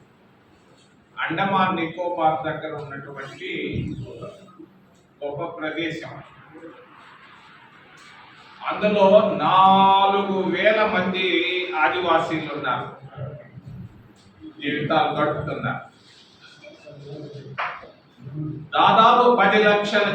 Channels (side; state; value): both; identical; correlation 1.00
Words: అండమాన్ నికోబార్ దగ్గర ఉన్నటువంటి గొప్ప ప్రదేశం. అందులో 4,000 మంది ఆదివాసీలు ఉన్నారు, జీవితాలు గడుపుతున్నారు. దాదాపు 10 లక్షల